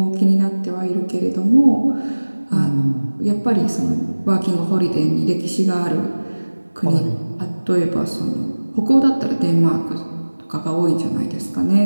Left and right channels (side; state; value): both; inverted; correlation -1.00